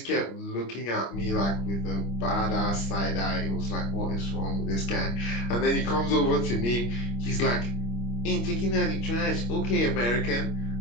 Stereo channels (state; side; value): late; right; 25 ms